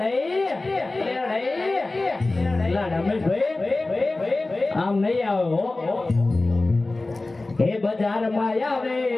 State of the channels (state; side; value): quieter; right; 3.1 dB